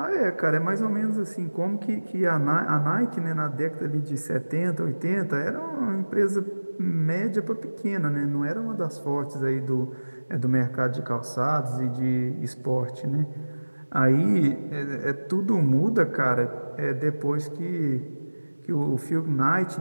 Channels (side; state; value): both; inverted; correlation -1.00